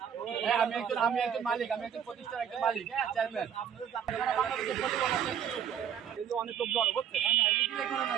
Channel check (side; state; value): left; quieter; 8.7 dB